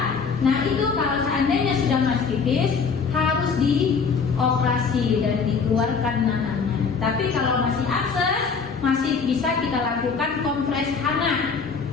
Nah itu kalau seandainya sudah mastitis, harus dioperasi dan dikeluarkan nanahnya. Tapi kalau masih abses, masih bisa kita lakukan kompres hangat.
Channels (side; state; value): right; quieter; 5.4 dB